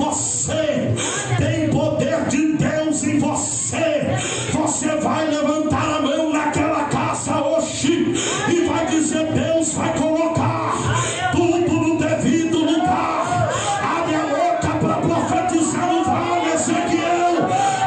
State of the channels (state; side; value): identical; both; correlation 1.00